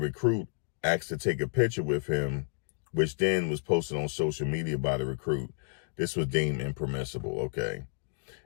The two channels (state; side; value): silent; right; digital silence